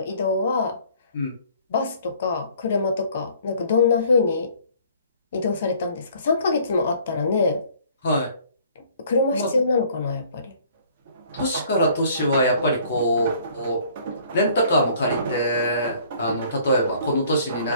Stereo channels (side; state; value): both; inverted; correlation -0.56